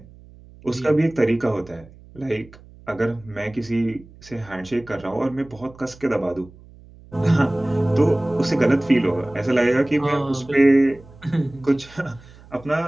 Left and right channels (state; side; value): noise; right; hum, 22 dB below the sound